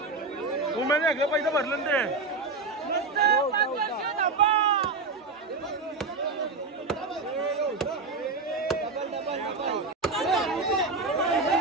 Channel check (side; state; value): left; quieter; 3.9 dB